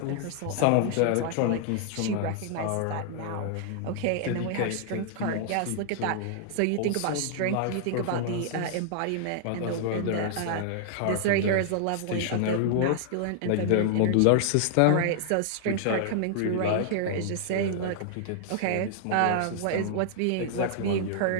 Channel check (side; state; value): both; different; correlation 0.00